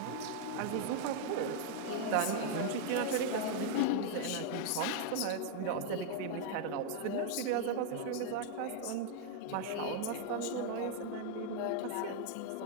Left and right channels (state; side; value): different; both; correlation 0.00